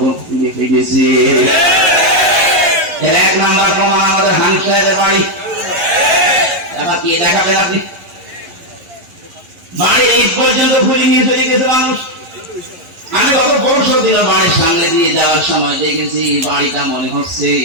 ফিরে ফিরেছে। এর 1 নাম্বার প্রমাণ আমাদের হানসাহের বাড়ি। এবার কি দেখাবেন আপনি? বাড়ি এই পর্যন্ত ঘুরে নিয়ে চলে গেছে মানুষ। আমি গত পরশু দিন বাড়ির সামনে দিয়ে যাওয়ার সময় দেখেছি বাড়িটা মনে হচ্ছে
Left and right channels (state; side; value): late; left; 11 ms